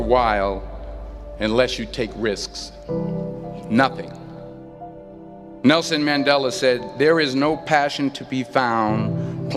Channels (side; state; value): both; identical; correlation 1.00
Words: unless you take risks. Nothing. Nelson Mandela said, "There is no passion to be found